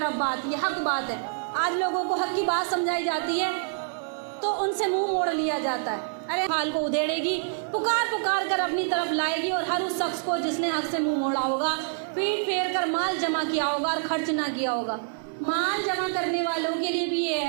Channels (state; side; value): silent; left; digital silence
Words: بات، یہ حق بات ہے۔ آج لوگوں کو حق کی بات سمجھائی جاتی ہے تو ان سے منہ موڑ لیا جاتا ہے۔ ارے حال کو ادھیڑے گی، پکار پکار کر اپنی طرف لائے گی، اور ہر اس شخص کو جس نے حق سے منہ موڑا ہوگا، پیٹ پھیر کر مال جمع کیا ہوگا اور خرچ نہ کیا ہوگا۔ مال جمع کرنے والوں کے لیے بھی یہ